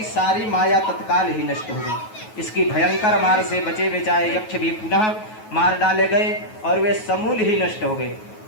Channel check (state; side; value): late; right; 9.3 ms